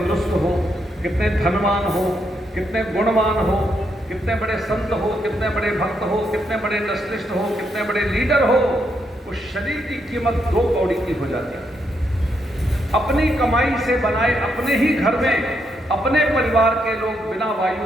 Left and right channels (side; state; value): both; normal; correlation 0.78